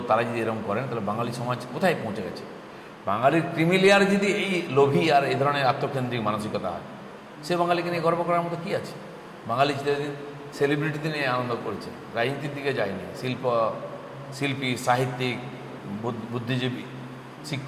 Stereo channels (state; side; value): identical; both; correlation 1.00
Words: তারা যদি এরকম করেন, তাহলে বাঙালি সমাজ কোথায় পৌঁছে গেছে? বাঙালির ক্রিমিলিয়ার যদি এই লোভী আর এই ধরনের আত্মকেন্দ্রিক মানসিকতা হয়, সে বাঙালিকে নিয়ে গর্ব করার মতো কী আছে? বাঙালি চিরদিন সেলিব্রিটিতে নিয়ে আনন্দ করেছে, রাজনীতির দিকে যায়নি। শিল্পী, সাহিত্যিক, বুদ্ধিজীবী,